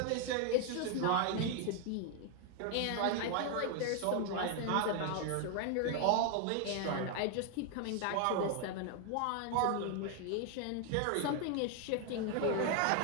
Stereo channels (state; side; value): different; both; correlation 0.00